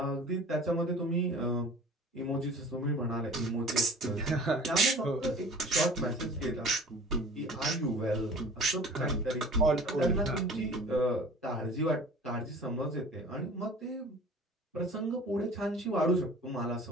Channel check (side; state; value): both; normal; correlation 0.44